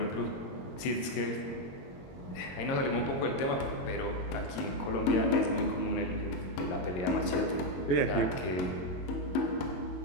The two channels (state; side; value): late; right; 22 ms